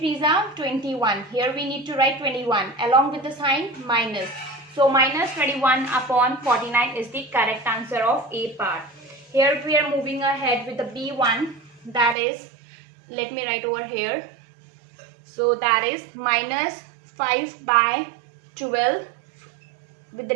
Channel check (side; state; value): left; drops out; at 12.2 s